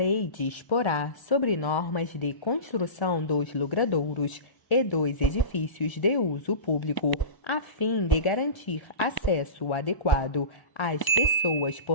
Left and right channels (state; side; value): late; right; 1.0 ms